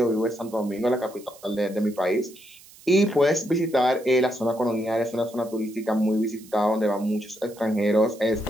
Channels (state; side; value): noise; right; hiss, 22 dB below the sound